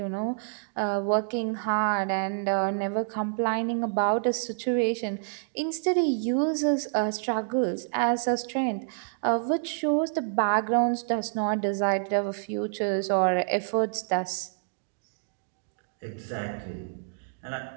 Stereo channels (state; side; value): silent; left; digital silence